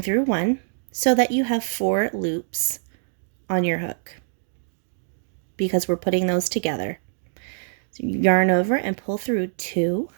1 so that you have 4 loops on your hook because we're putting those together. So you yarn over and pull through 2,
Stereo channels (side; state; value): left; silent; digital silence